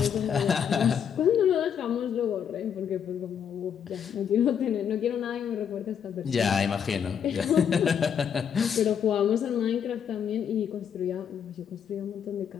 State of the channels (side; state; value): right; quieter; 8.0 dB